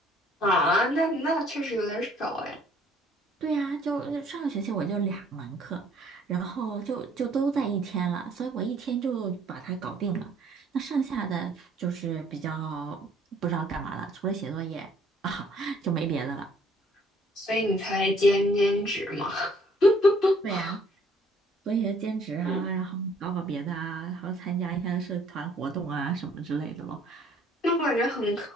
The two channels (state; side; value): normal; both; correlation 0.60